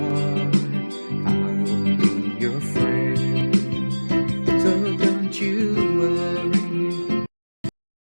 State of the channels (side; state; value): both; inverted; correlation -1.00